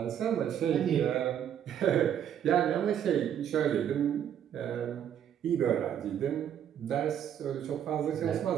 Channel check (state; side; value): quieter; left; 9.5 dB